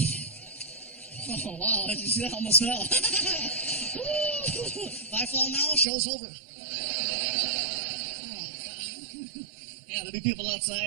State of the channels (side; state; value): left; drops out; at 5.9 s